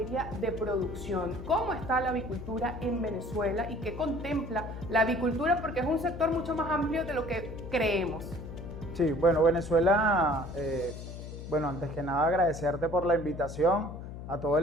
de producción. ¿Cómo está la avicultura en Venezuela y qué contempla la avicultura? Porque es un sector mucho más amplio de lo que creemos. Sí, bueno, Venezuela, antes que nada agradecerte por la invitación a todo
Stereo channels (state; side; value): noise; left; hum, 10 dB below the sound